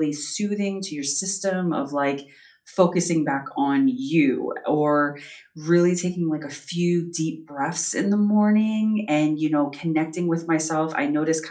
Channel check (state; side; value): identical; both; correlation 1.00